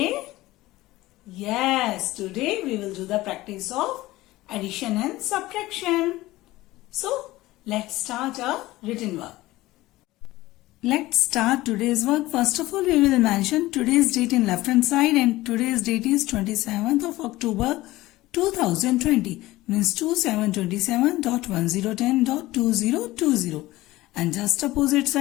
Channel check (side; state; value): right; quieter; 17.9 dB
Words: Yes, today we will do the practice of addition and subtraction. So, let's start our written work. Let's start today's work. First of all, we will mention today's date in left hand side, and today's date is 27th of October 2020, means 2727.1010.2020, and just opposite